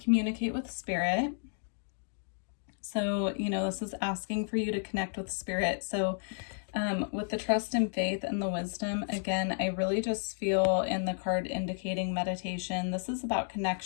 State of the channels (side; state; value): right; silent; digital silence